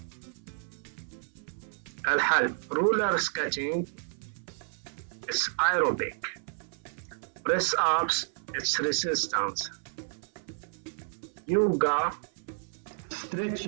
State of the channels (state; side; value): silent; left; 57 dB below the other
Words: الحل: رولر سكيتينج it's aerobic, press ups it's resistance, yoga,